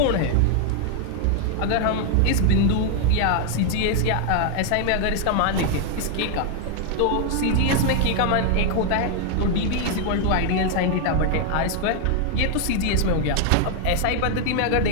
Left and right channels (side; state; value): both; different; correlation 0.00